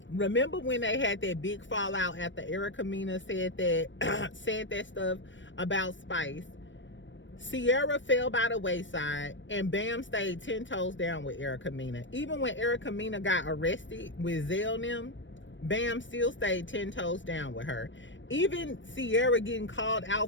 Remember when they had that big fallout after Erica Mena said that stuff about Spice? Sierra fell by the wayside and BAM stayed 10 toes down with Erica Mena. Even when Erica Mena got arrested with Zell and them, BAM still stayed 10 toes down with her. Even Sierra getting called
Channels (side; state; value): right; late; 0.55 ms